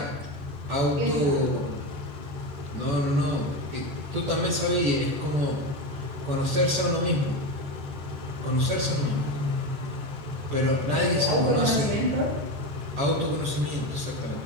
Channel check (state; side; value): late; left; 14 ms